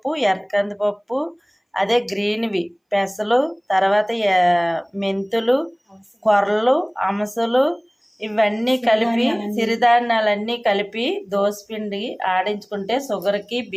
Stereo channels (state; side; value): identical; both; correlation 1.00